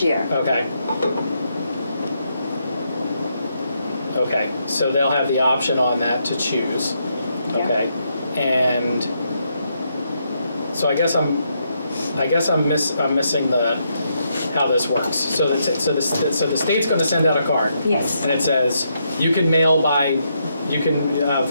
year. okay. Okay, so they'll have the option on that to choose, Yeah. okay? And so I guess I'm missing how this works. So the state's going to send out a card. Yes, And it says, you can vote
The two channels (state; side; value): inverted; both; correlation -0.79